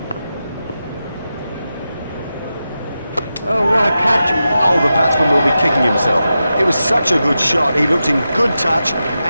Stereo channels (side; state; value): both; inverted; correlation -0.90